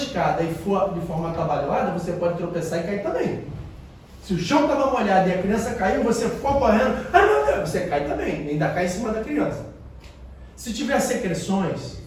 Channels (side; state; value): both; identical; correlation 1.00